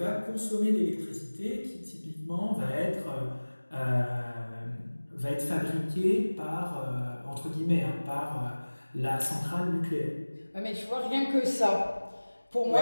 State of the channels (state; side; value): inverted; both; correlation -1.00